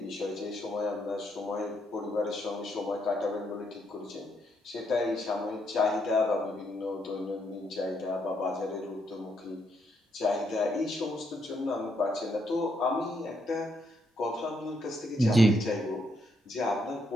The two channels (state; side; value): normal; both; correlation 0.76